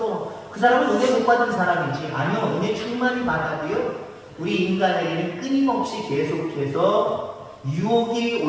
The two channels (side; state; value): both; identical; correlation 1.00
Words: 그 사람은 은혜 못 받은 사람이지. 아니요, 은혜 충만히 받아도요, 우리 인간에게는 끊임없이 계속해서 유혹이